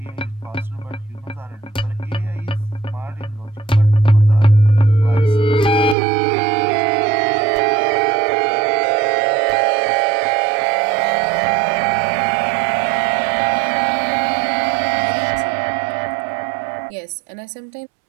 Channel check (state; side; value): drops out; left; at 6.0 s